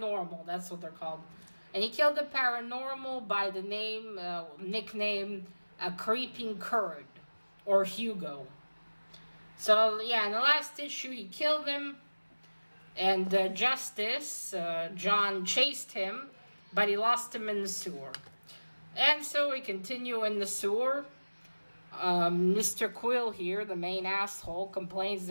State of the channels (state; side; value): inverted; both; correlation -1.00